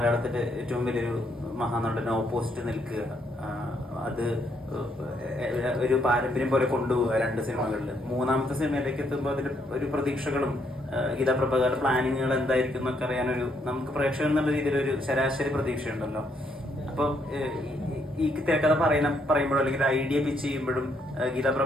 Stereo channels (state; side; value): normal; both; correlation 0.73